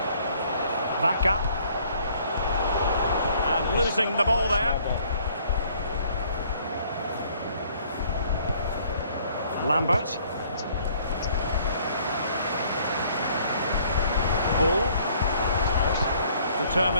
Vaca. And losing the ball there. Lambert. Bull.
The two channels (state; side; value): inverted; both; correlation -0.60